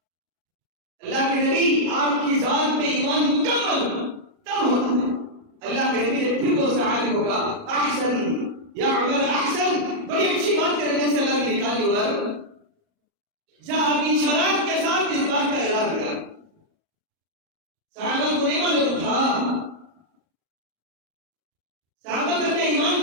اللہ کے نبی آپ کی ذات پہ ایمان مکمل تب ہوتا ہے. اللہ کے نبی نے پھر وہ صحابی ہوگا احسن یا عمر احسن. بڑی اچھی بات کرنے سے اللہ نے نکالی عمر، جا اپنی شرائط کے ساتھ اس بات کا اعلان کر. صحابہ کو نہیں معلوم تھا، صحابہ کا ایمان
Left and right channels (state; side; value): late; left; 37 ms